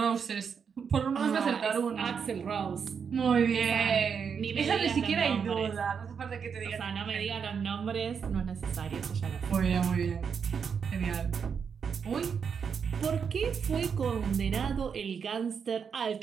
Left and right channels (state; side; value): quieter; left; 6.6 dB